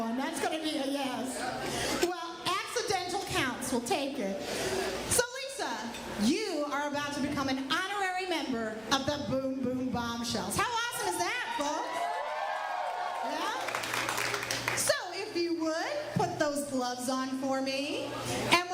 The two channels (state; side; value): identical; both; correlation 1.00